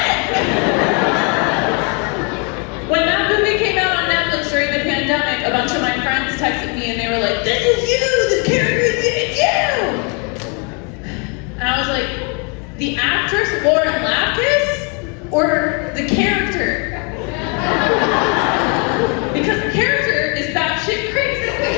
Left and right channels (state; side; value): quieter; right; 35.1 dB